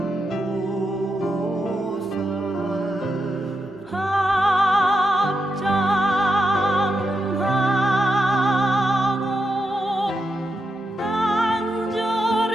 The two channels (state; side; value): normal; both; correlation 0.85